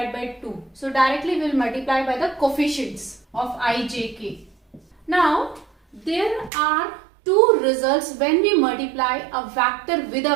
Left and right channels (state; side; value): drops out; left; at 6.5 s